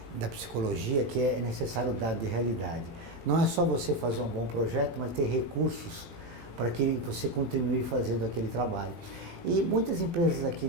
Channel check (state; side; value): late; left; 18 ms